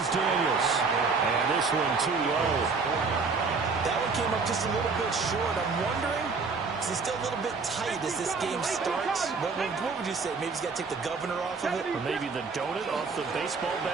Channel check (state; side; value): quieter; left; 4.6 dB